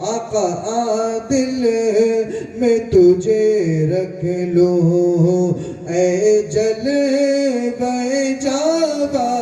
आका, आदिल में तुझे रख लो, ऐ जलवे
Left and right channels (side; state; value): both; identical; correlation 1.00